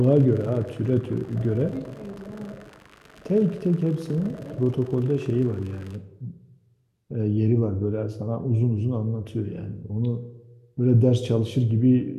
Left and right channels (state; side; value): identical; both; correlation 1.00